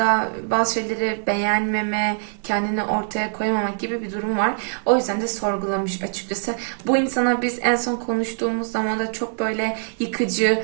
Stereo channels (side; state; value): left; silent; digital silence